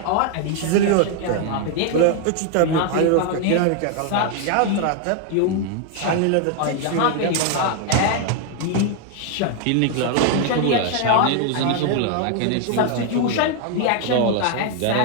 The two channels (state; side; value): different; both; correlation 0.01